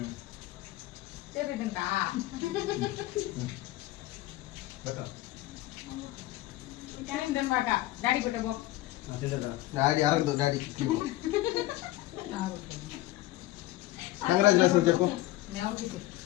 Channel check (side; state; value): right; quieter; 16.5 dB